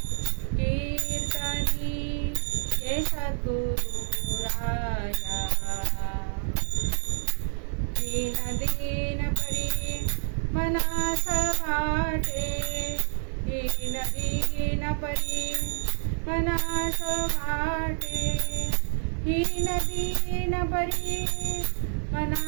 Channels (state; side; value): silent; left; digital silence